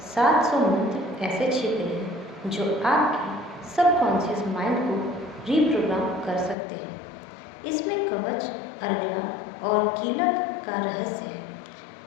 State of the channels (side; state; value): right; drops out; at 6.6 s